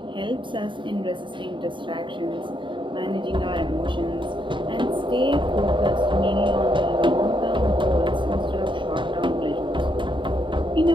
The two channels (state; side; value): late; left; 0.23 ms